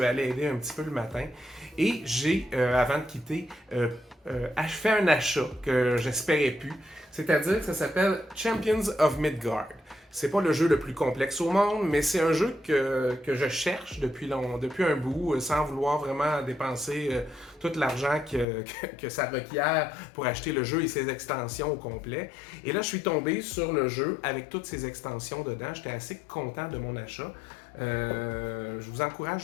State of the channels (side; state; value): right; drops out; at 18.4 s